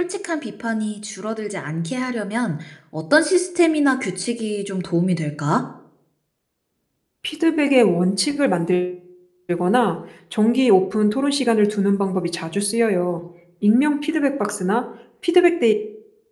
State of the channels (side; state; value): both; identical; correlation 1.00